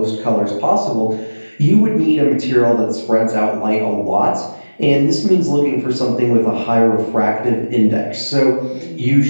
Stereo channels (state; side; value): inverted; both; correlation -1.00